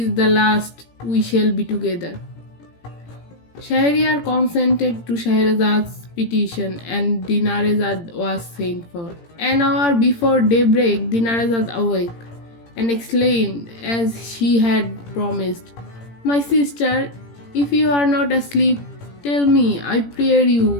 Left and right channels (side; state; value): right; late; 17 ms